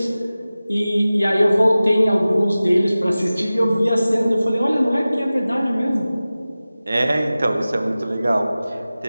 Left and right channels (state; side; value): inverted; both; correlation -0.97